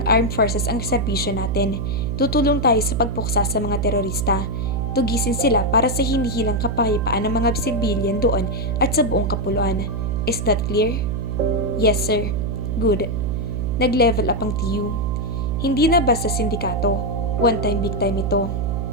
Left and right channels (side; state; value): right; noise; hum, 1 dB below the sound